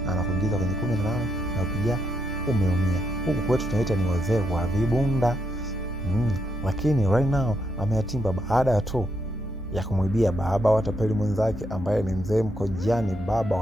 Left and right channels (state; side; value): normal; both; correlation 0.79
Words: anakuingiza kwenye 18 na ukija umeumia. Huku kwetu tunaita ni wazee wa vibunda. Lakini right now ameyatimba baada tu ya kumwibia baba wa tapeli mwenzake ambaye ni mzee Mkojani, baba